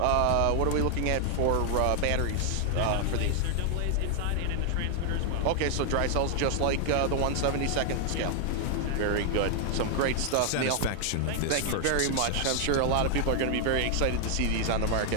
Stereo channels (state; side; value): different; both; correlation 0.00